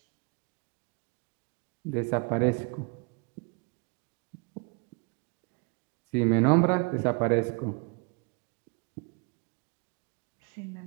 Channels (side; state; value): left; quieter; 33.9 dB